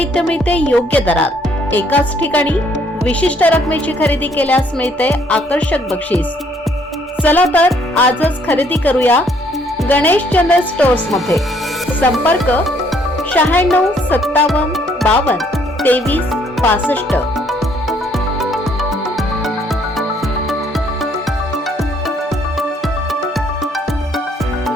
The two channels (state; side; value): normal; both; correlation 0.65